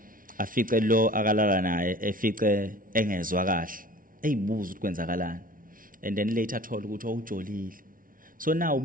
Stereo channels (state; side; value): late; left; 0.40 ms